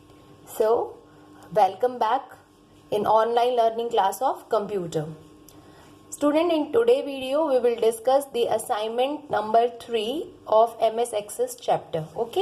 So, welcome back in online learning class of computer. Student, in today's video we will discuss the assignment number 3 of MS Access chapter.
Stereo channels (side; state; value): both; identical; correlation 1.00